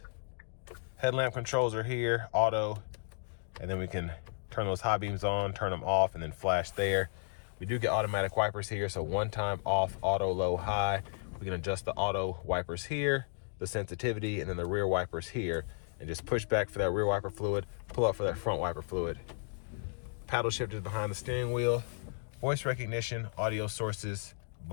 headlamp controls are here, auto, and then we can turn those high beams on, turn them off, and then flash there. We do get automatic wipers here, so one time off, auto, low, high. We can adjust the auto wipers here, the sensitivity, and then the rear wipers here, and just push back for that rear wiper fluid, pull up for that front wiper fluid. Paddle shifters behind the steering wheel, voice recognition, audio sources,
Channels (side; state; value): right; silent; 55 dB below the other